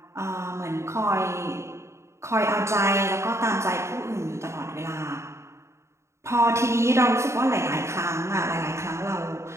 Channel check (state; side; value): late; left; 0.13 ms